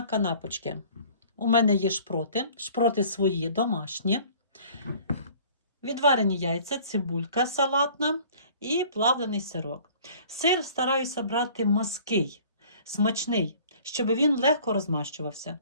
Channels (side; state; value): both; inverted; correlation -0.50